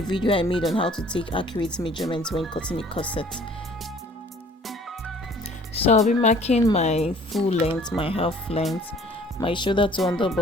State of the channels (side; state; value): both; normal; correlation 0.54